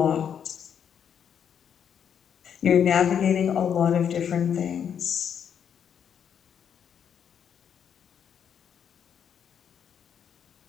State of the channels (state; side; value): quieter; right; 8.2 dB